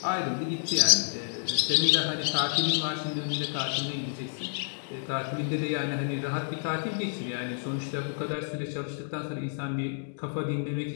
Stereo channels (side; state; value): right; silent; digital silence